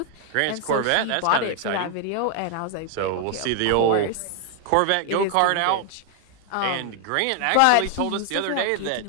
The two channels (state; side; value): different; both; correlation 0.00